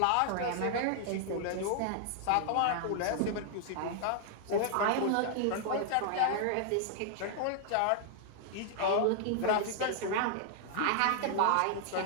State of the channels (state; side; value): different; both; correlation -0.01